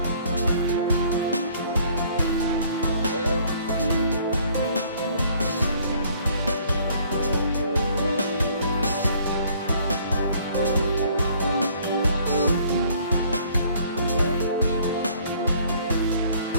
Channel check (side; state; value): both; inverted; correlation -0.60